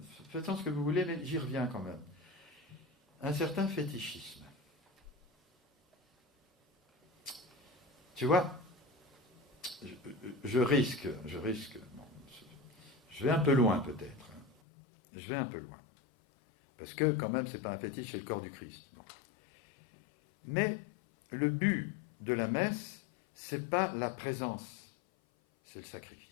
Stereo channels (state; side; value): drops out; right; at 14.6 s